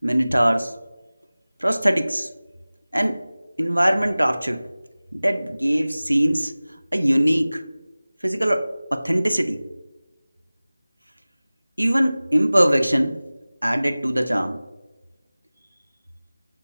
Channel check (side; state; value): both; inverted; correlation -0.99